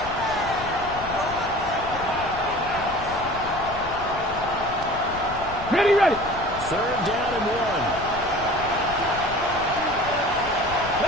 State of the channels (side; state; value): left; noise; rumble, 13 dB below the sound